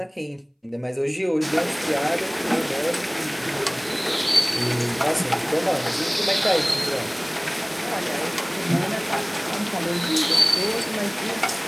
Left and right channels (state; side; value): identical; both; correlation 1.00